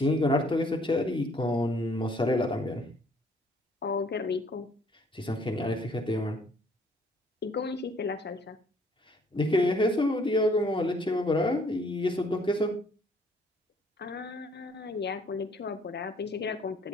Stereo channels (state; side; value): normal; both; correlation 0.62